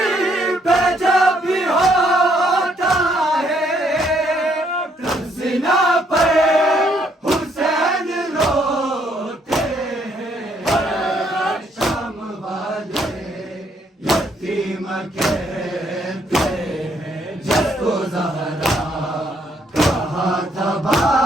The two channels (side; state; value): both; normal; correlation 0.70